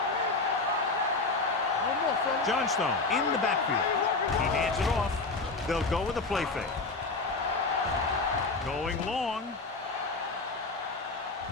Johnstone in the backfield. He hands it off. They'll go with a play fake. Going long.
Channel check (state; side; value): quieter; right; 3.7 dB